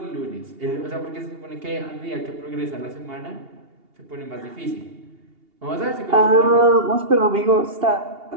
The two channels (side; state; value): left; late; 2.8 ms